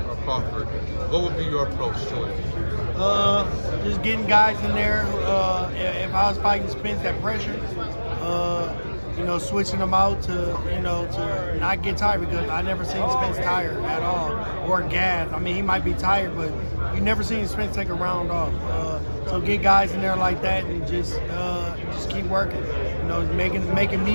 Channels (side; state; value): both; inverted; correlation -1.00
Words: Crawford, what would be your approach to it? Just getting guys in there. If I was fighting Spence, that pressure. Switching them out to not get tired, because I never seen Spence tired at all or gassed. I mean, he might be tired, but you never seen Spence take a round off. So get guys in there like that and just keep working. Making